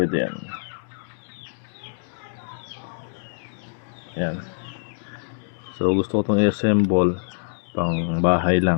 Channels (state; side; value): silent; right; digital silence